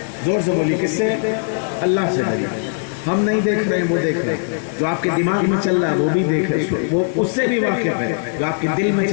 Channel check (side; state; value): right; silent; digital silence